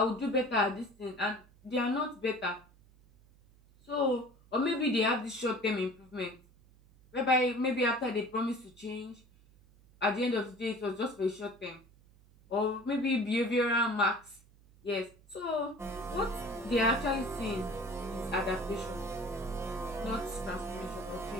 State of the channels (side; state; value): right; noise; hum, 27 dB below the sound